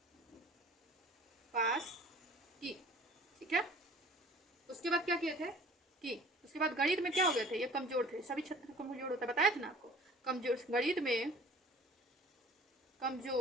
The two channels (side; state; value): both; normal; correlation 0.48